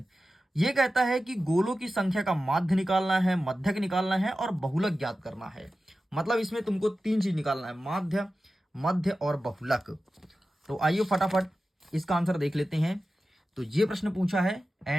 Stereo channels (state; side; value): normal; both; correlation 0.94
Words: ये कहता है कि गोलों की संख्या का माध्य निकालना है, मध्यक निकालना है और बहुलक ज्ञात करना है। मतलब इसमें तुमको 3 चीज निकालना है, माध्य, मध्य और बहुलक। तो आइए फटाफट इसका आंसर देख लेते हैं। तो ये प्रश्न पूछा है